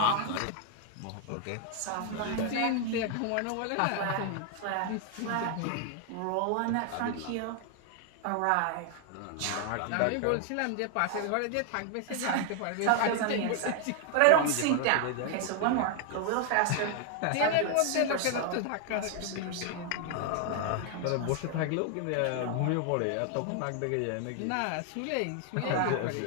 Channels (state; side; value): different; both; correlation 0.00